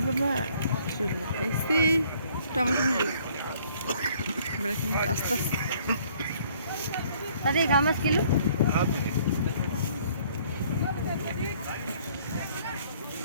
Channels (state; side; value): inverted; both; correlation -0.60